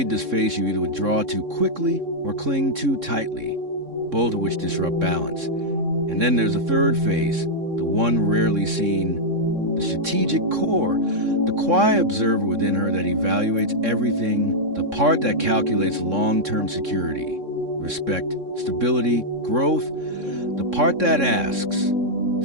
this phase, you either withdraw too quickly or cling too tightly, both of which disrupt balance. And then there's a third phase, the one rarely seen, the strategic core, the quiet observer within her that evaluates everything, the part that calculates long-term security, respect, stability, growth, the part that asks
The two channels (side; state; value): left; late; 3.6 ms